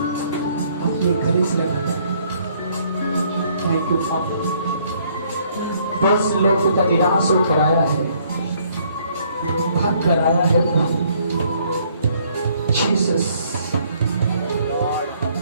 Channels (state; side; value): inverted; both; correlation -0.64